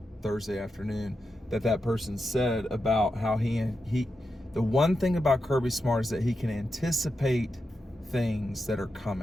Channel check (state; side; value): normal; both; correlation 0.88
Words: Thursday afternoon that person said about how he the one thing about Kirby Smart is that he can anticipate things that are